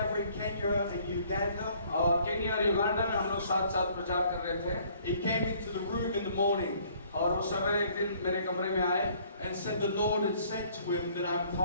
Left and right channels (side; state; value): both; inverted; correlation -0.60